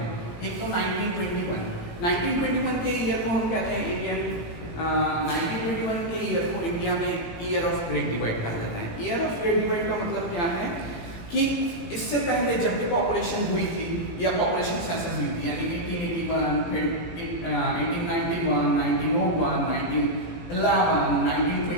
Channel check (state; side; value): late; right; 18 ms